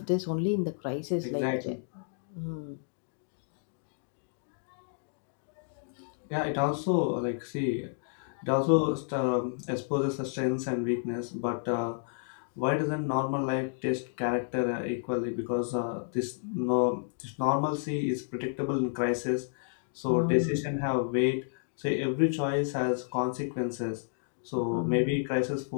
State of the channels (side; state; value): right; silent; digital silence